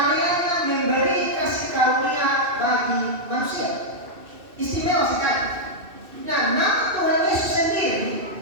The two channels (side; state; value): left; late; 2.6 ms